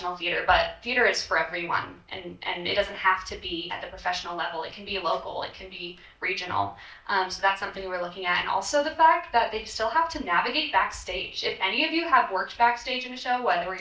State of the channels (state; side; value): identical; both; correlation 1.00